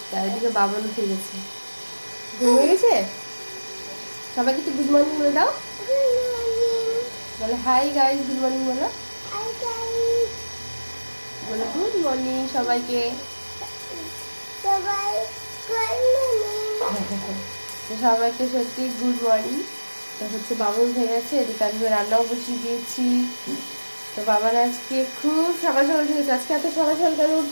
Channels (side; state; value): both; inverted; correlation -1.00